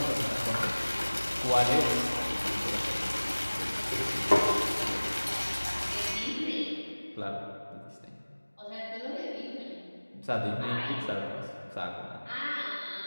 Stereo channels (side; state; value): both; inverted; correlation -1.00